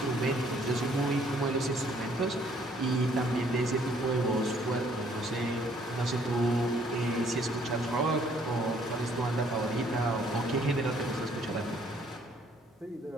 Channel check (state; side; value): normal; both; correlation 0.63